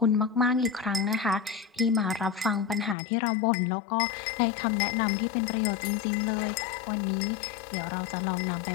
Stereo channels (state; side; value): drops out; right; at 3.0 s